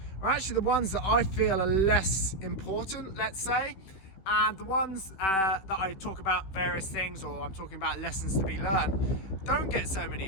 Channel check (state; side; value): late; right; 16 ms